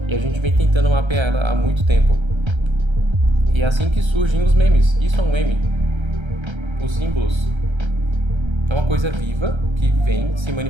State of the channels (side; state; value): left; late; 1.3 ms